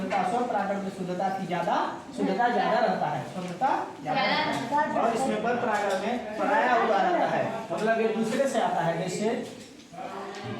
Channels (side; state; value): both; identical; correlation 1.00